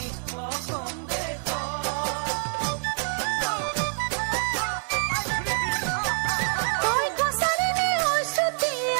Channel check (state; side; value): silent; left; 61 dB below the other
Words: অসম তই কছাৰী নে ঐ